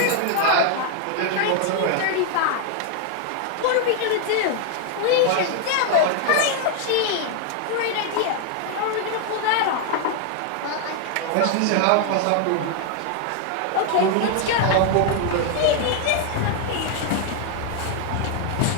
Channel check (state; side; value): different; both; correlation 0.00